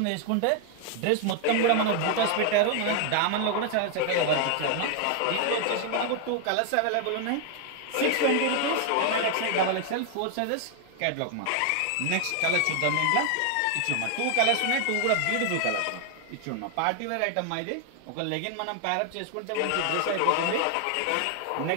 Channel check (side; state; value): both; different; correlation 0.00